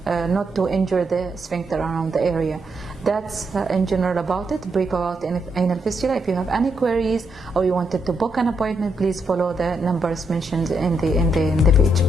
not to injure the sphincter around the area. That's in general about it, brief about anal fistula. If you have any queries or you wanted to book an appointment, please follow the numbers mentioned in the page.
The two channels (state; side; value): normal; both; correlation 0.79